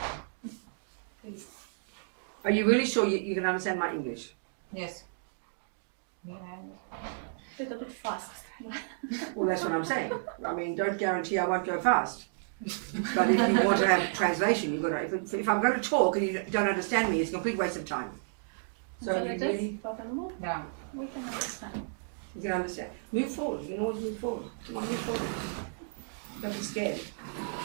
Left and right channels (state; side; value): silent; left; digital silence